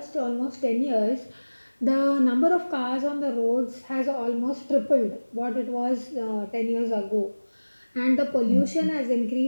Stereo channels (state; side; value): inverted; both; correlation -1.00